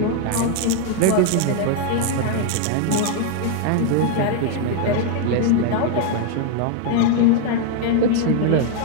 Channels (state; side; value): different; both; correlation 0.00